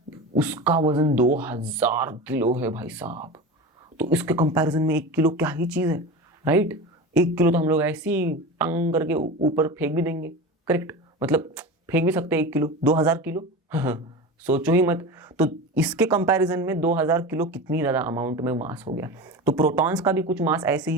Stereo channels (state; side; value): normal; both; correlation 0.28